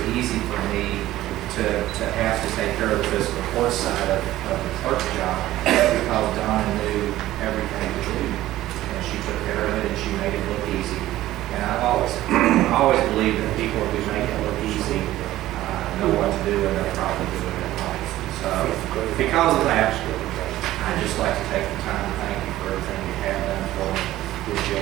easy for me to have to take care of the fiscal court side of the clerk job because Donna knew everything to do, and she took care of it and she made it look easy. And I've always believed that people who make it look easy know what to do and they're probably doing it right. So because of that, I'd just like to take the time to thank you for everything you have done for me. Wish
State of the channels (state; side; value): quieter; left; 15.1 dB